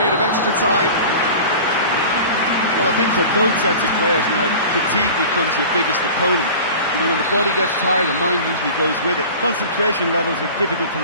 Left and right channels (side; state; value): both; inverted; correlation -0.38